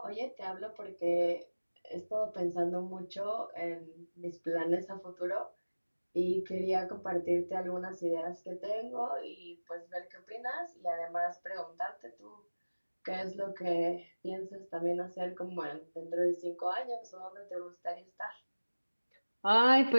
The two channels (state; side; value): inverted; both; correlation -1.00